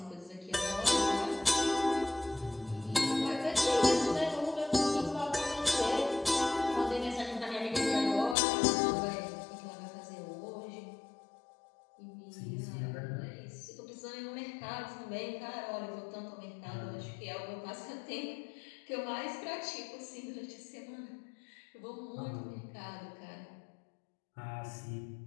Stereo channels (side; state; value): right; drops out; at 8.3 s